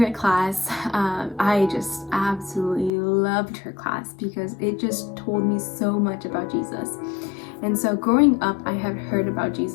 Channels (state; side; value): drops out; right; at 2.9 s